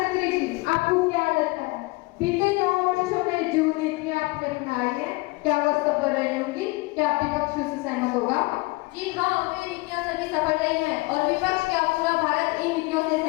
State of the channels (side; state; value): right; quieter; 24.5 dB